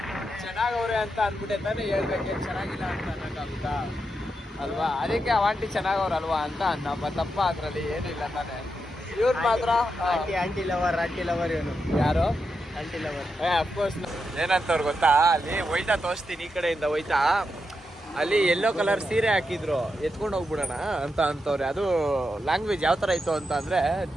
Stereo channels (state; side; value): normal; both; correlation 0.85